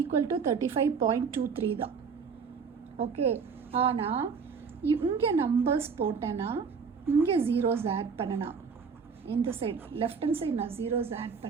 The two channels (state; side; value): quieter; left; 5.8 dB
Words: டு 35.23 தான். ஓகே. ஆனால் இங்கே நம்பர்ஸ் போட்டேன்னா இங்கே ஜீரோஸ் ஆட் பண்ணனா, இந்த சைடு லெஃப்ட் ஹேண்ட் சைடு நான் ஜீரோஸ் ஆட்